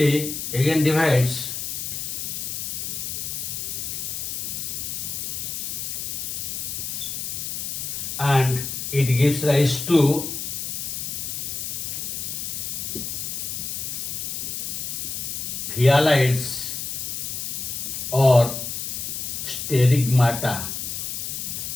again divides and it gives rise to phyalides or sterigmata.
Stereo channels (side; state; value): left; noise; hiss, 4 dB below the sound